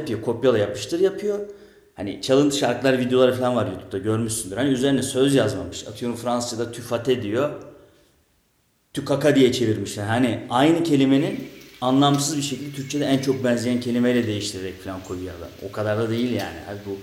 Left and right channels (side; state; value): both; identical; correlation 1.00